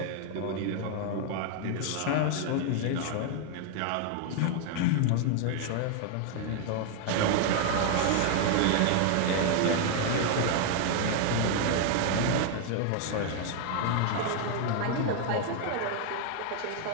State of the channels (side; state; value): both; different; correlation 0.00